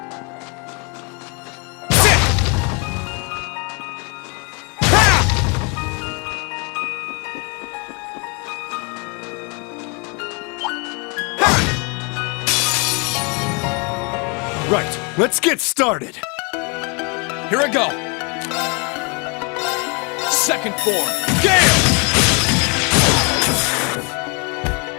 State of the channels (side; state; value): right; quieter; 32.8 dB